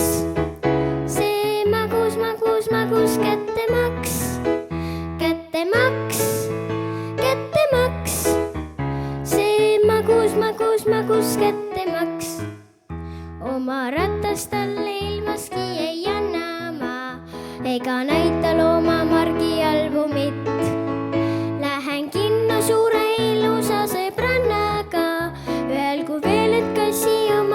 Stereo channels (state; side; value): identical; both; correlation 1.00